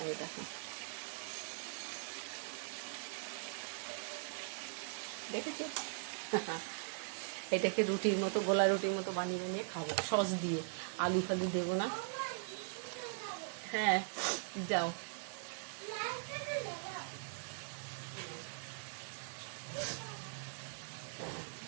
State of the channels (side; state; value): left; silent; digital silence